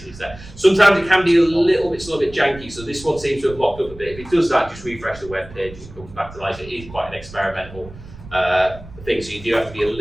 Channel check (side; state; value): right; noise; rumble, 17 dB below the sound